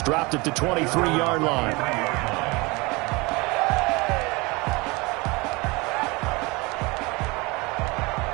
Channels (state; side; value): quieter; left; 25.3 dB